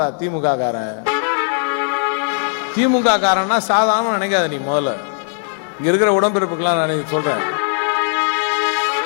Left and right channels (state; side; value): silent; right; 67 dB below the other